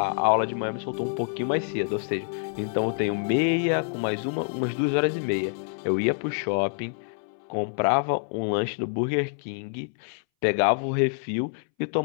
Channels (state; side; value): silent; right; 60 dB below the other